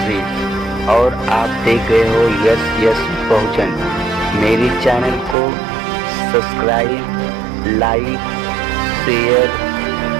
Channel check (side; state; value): left; drops out; at 5.4 s